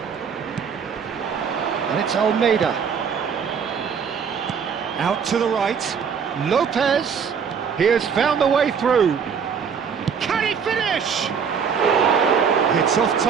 And it's Almeida. Out to the right. Lopez. He has found the way through. Can he finish? It's off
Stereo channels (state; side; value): quieter; left; 6.7 dB